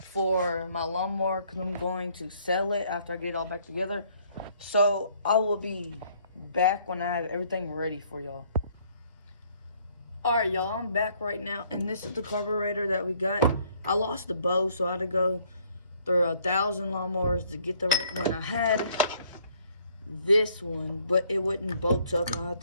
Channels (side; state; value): both; inverted; correlation -0.63